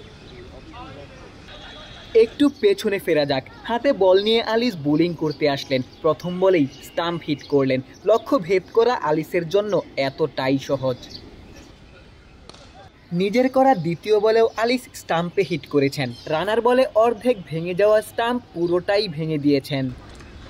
একটু পেছনে ফেরা যাক। হাতে বল নিয়ে আলিস বোলিং করতে আসলেন, প্রথম বলেই স্টাম্প হিট করলেন। লক্ষ্য ভেদ করা আলিসের জন্য এতটাই সহজ। নিজের করা দ্বিতীয় বলেও আলিস স্টাম্পে হিট করেছেন। রানার বলে অর্ধেক ভেঙে যাওয়া স্টাম্প পুরোটাই ভেঙে দিয়েছেন।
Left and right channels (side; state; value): both; identical; correlation 1.00